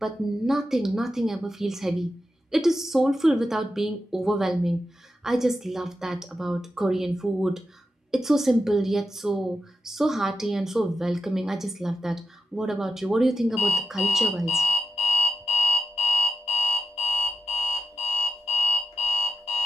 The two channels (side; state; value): both; normal; correlation 0.89